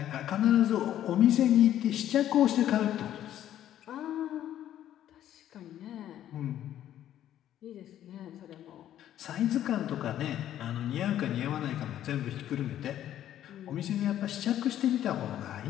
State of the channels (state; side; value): quieter; right; 11.6 dB